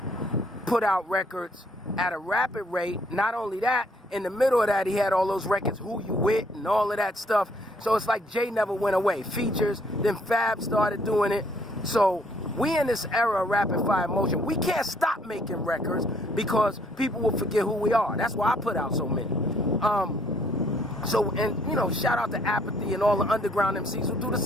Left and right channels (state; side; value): normal; both; correlation 0.65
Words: put out records at a rapid rate. Not only that, in the middle of that, he had all those records, Who You With, and all of that stuff. So it's like Jay never went away. Features, then Fab started doing it. So we in this era of rapid fire motion. We can't stop making records because people will forget who we are. That's why I put out so many. Shout out to Apathy and all the underground MCs who do the